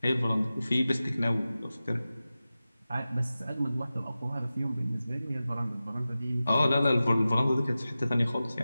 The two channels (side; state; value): both; inverted; correlation -0.95